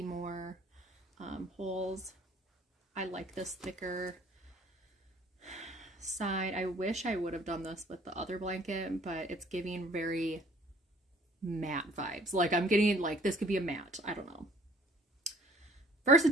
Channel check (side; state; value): both; normal; correlation 0.56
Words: more holes. I like this thicker side. I wish I would have done this with the other blanket, but it's giving very matte vibes. Like I'm getting like this could be a matte. I don't know.